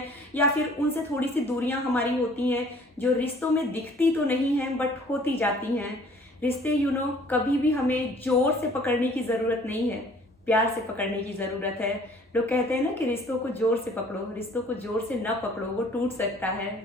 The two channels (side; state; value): both; normal; correlation 0.54